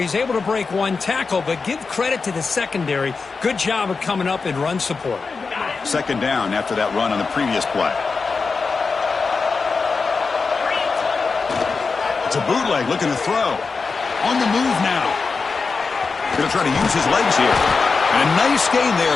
able to break one tackle, but give credit to the secondary. Good job of coming up in run support. 2nd down after that run on the previous play. It's a bootleg looking to throw. On the move now. Going to try to use his legs here. And a nice gain there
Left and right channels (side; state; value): right; quieter; 4.6 dB